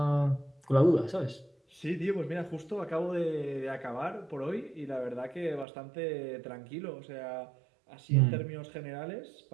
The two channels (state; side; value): drops out; left; at 5.7 s